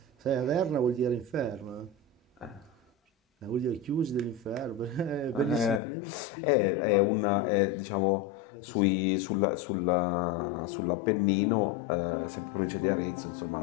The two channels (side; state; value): right; drops out; at 5.8 s